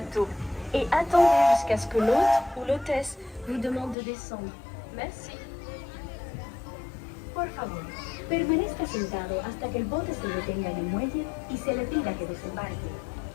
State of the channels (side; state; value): right; drops out; at 4.0 s